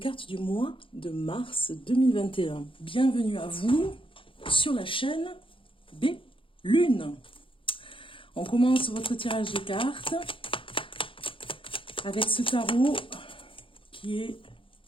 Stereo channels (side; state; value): right; late; 0.25 ms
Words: du mois de mars 2021. Bienvenue à vous sur la chaîne Bellune. On commence votre tirage de cartes avec ce tarot qui est